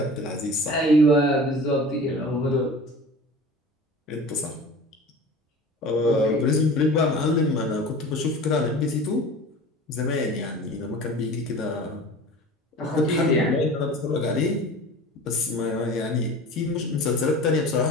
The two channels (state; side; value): normal; both; correlation 0.38